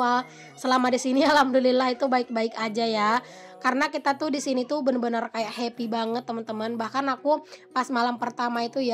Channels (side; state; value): both; identical; correlation 1.00